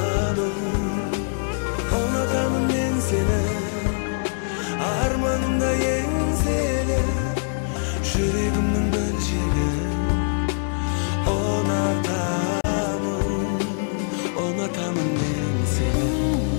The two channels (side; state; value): right; silent; 63 dB below the other